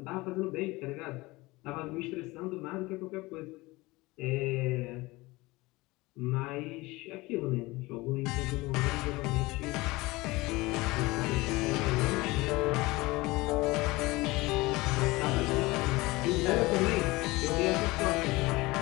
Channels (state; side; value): quieter; right; 21.6 dB